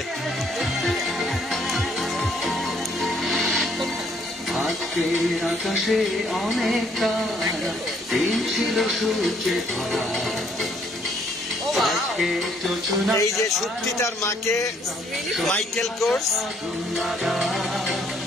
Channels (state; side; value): normal; both; correlation 0.66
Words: আজকের আকাশে অনেক তারা, দিন ছিল সূর্যে ভরা। আজকে যোজনা এই যে সুপ্তি তার মাকে মাইকেল কোর্স